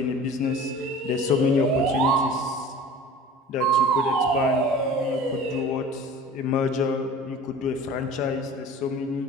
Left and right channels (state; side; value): normal; both; correlation 0.41